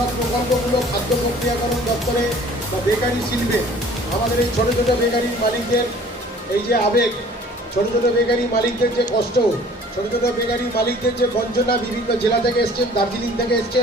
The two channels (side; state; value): both; normal; correlation 0.51